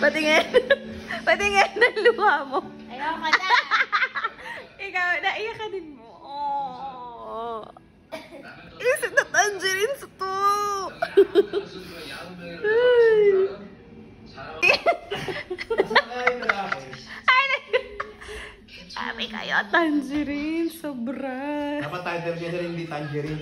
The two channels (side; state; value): both; identical; correlation 1.00